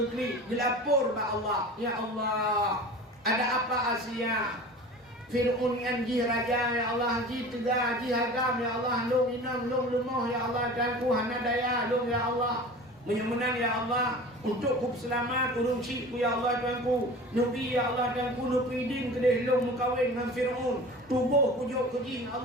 dilapor ba Allah ya Allah ada apa Asia Fir'aun yang ji raja ya Allah ji tegah ji hagam ya Allah long inam long lemah ya Allah dan ku hana daya long ya Allah Menyemenan ya Allah untuk ku selamat urung syirku ya Allah Tuhanku. Nabi ya Allah Tuhanku nupi din kedeh long mukawin dengan Fir'aun. Tubuh kujuk kejin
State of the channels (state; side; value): normal; both; correlation 0.38